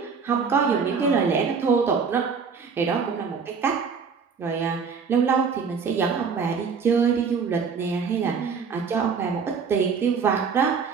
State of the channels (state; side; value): quieter; left; 5.8 dB